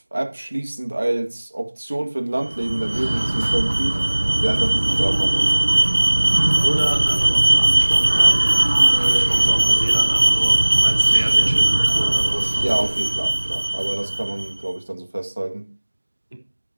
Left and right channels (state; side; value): inverted; both; correlation -1.00